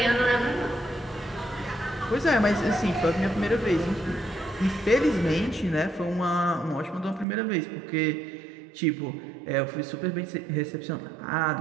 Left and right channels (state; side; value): drops out; left; at 7.2 s